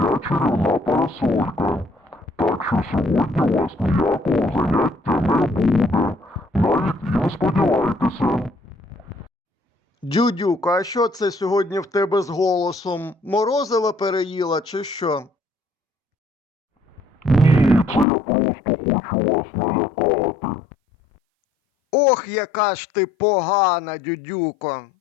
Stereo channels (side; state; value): right; drops out; at 18.1 s